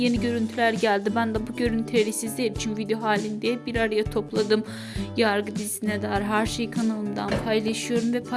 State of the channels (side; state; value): both; identical; correlation 1.00